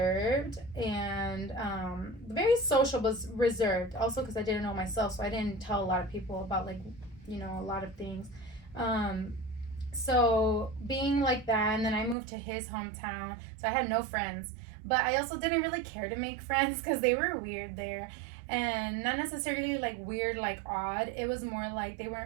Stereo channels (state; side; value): drops out; left; at 12.2 s